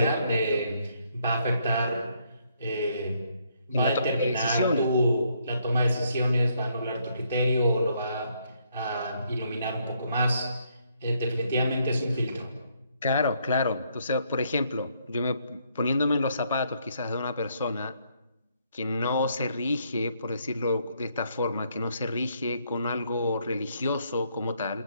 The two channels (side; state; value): both; inverted; correlation -0.72